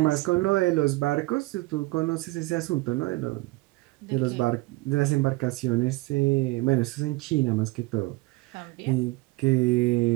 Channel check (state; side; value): quieter; left; 22.0 dB